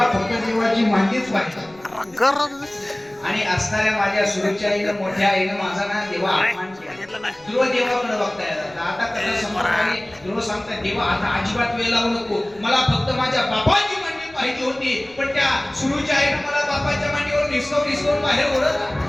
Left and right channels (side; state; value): left; noise; rumble, 28 dB below the sound